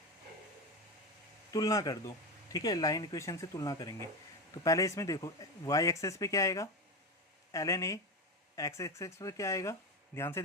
तुलना कर दो। ठीक है, लाइन इक्वेशन से तुलना करेंगे। तो पहले इसमें देखो वाई एक्सेस पे क्या आएगा, L N A, X axis पे क्या आएगा, ध्यान से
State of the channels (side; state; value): both; normal; correlation 0.18